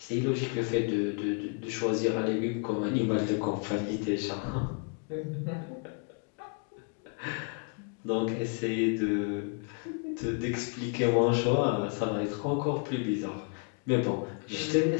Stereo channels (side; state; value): right; quieter; 39.9 dB